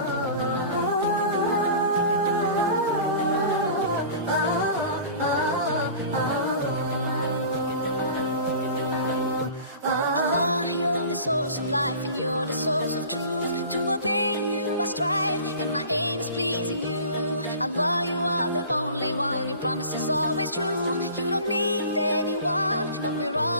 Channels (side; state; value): both; inverted; correlation -0.41